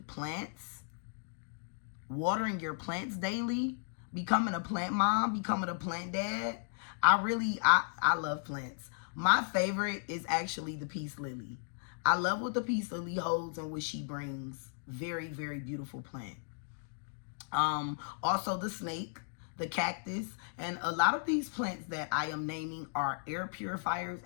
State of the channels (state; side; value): silent; right; digital silence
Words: plants, watering your plants daily, becoming a plant mom, becoming a plant dad. I love plants. My favorite is actually the peace lily. I love what the peace lily holds and what she brings. Very, very beautiful plant. Also the snake, the cactus, and a lot of these plants that I am naming are air purifiers,